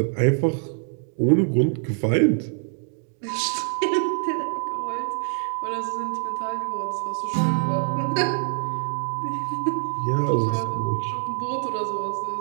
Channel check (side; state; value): left; silent; 62 dB below the other